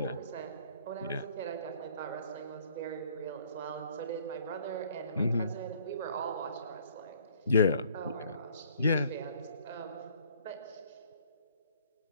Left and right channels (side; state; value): both; inverted; correlation -0.58